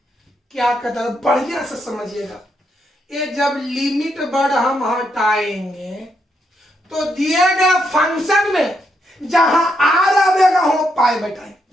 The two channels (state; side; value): normal; both; correlation 0.79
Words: क्या कहता है, बढ़िया से समझिएगा। ये जब लिमिट वर्ड हम हटाएंगे तो दिए गए फंक्शन में जहां आर आवेगा वो पाई बैठाएंगे,